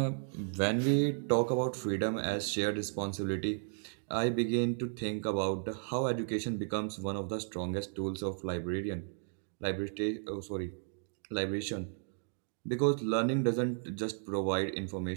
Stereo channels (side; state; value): left; silent; digital silence